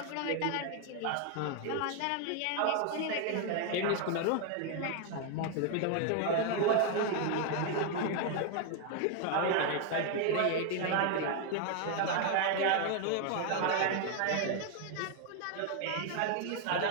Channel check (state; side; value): different; both; correlation 0.00